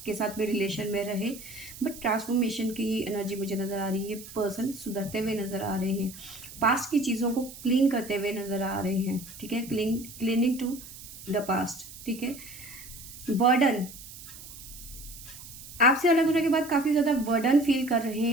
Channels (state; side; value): noise; right; hiss, 15 dB below the sound